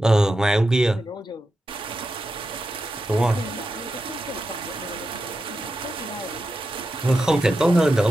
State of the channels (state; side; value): normal; both; correlation 0.89